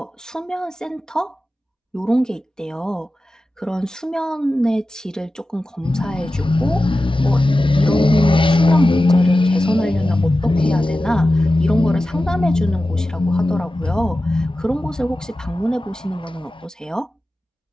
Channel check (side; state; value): both; normal; correlation 0.94